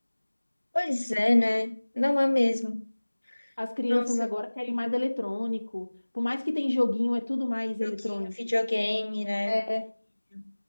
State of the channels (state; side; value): inverted; both; correlation -1.00